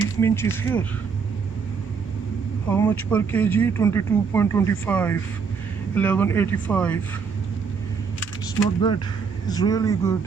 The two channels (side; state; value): left; quieter; 5.7 dB